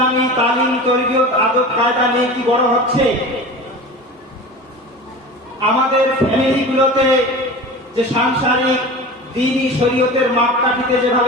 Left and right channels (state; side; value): normal; both; correlation 0.34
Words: তালিম তরবিয়ত আদব কায়দা নিয়ে কি বড় হচ্ছে? আমাদের ফ্যামিলিগুলোতে যে সাংসারিক দ্বীনি শরীয়তের মাপকাঠিতে